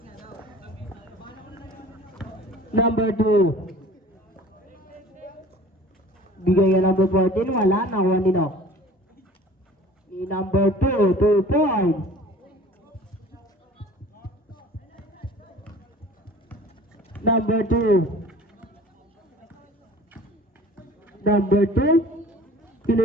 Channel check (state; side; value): normal; both; correlation 0.46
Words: Number 2. Bigay ka number 14, wala, nakuha ni Nock. Ni number 2, 2 points. Number 2. Number 2.